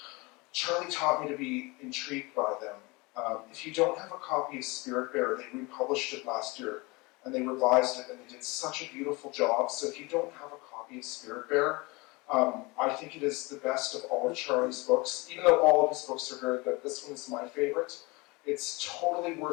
Charlie taught me to be intrigued by them. If you don't have a copy of Spirit Bear, they republished it last year, and they revised it, and they did such a beautiful job. So if you don't have a copy of Spirit Bear, I think it is the best of all of Charlie's books. Even though all of his books are very good, this one is my favorite. It's totally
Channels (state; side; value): quieter; right; 25.4 dB